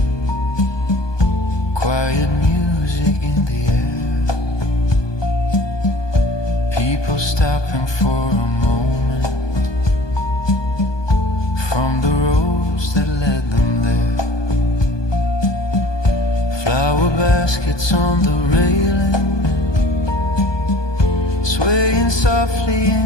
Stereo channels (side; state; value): right; late; 1.2 ms